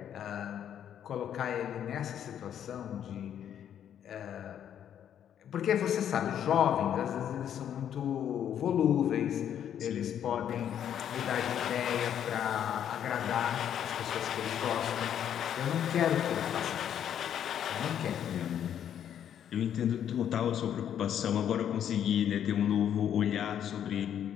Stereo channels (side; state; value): right; quieter; 9.6 dB